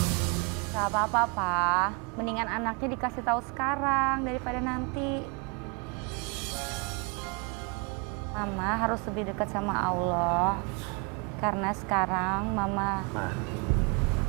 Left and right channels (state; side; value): quieter; left; 32.1 dB